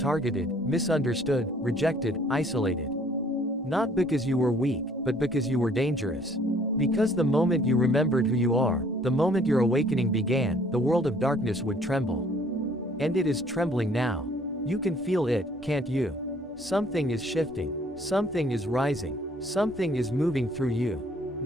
misunderstood, rejected, isolated. Not because you were weak, but because you were dangerous. Because the moment you remembered who you are, the moment your awakening began, the world of darkness would tremble. And it is trembling now. You can feel it, can't you? Something is shifting. Something is rising. Something is moving through you.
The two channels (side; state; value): both; normal; correlation 0.59